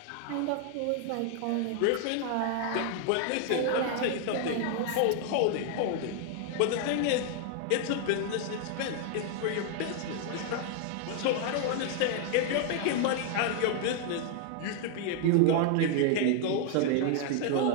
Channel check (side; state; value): both; different; correlation 0.00